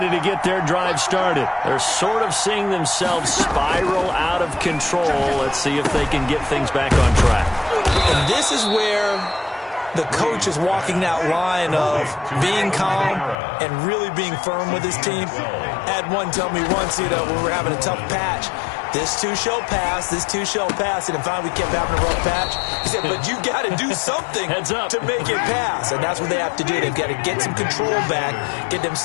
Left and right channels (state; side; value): drops out; right; at 13.4 s